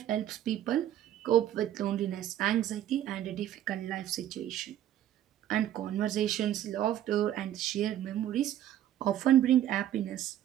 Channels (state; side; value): quieter; left; 11.8 dB